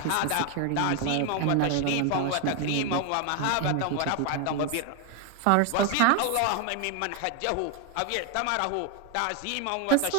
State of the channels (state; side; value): different; both; correlation 0.01